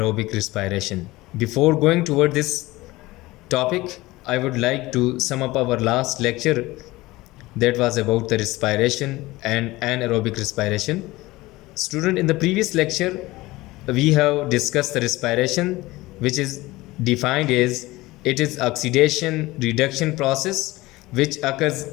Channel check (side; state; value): right; quieter; 19.6 dB